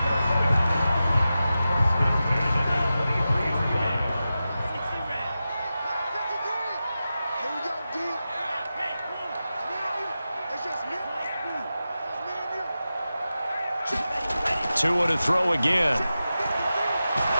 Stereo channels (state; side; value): inverted; both; correlation -0.93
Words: Two to throw again.